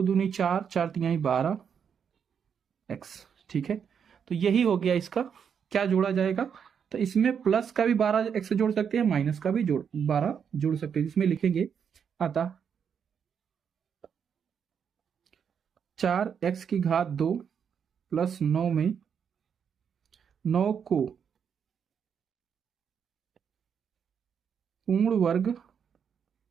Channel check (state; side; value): quieter; left; 7.3 dB